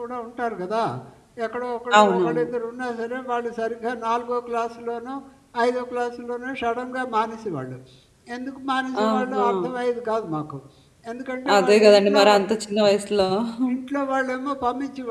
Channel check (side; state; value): both; identical; correlation 1.00